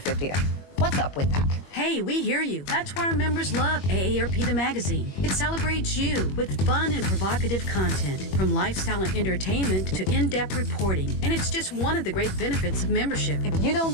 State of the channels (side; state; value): right; late; 21 ms